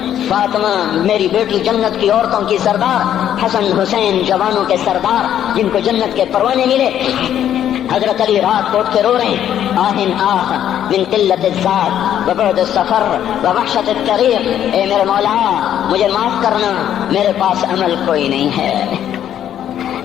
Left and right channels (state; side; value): quieter; right; 10.5 dB